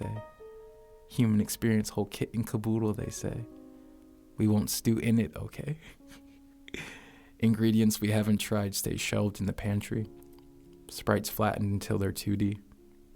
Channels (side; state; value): both; identical; correlation 1.00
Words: Human experience, whole kit and caboodle, they say. We won't stew in it, okay? Ingredients we haven't tried stay shelved in the pantry. Sprites flattened until they're 2D.